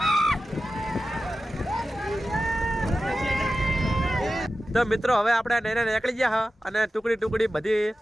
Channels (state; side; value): normal; both; correlation 0.94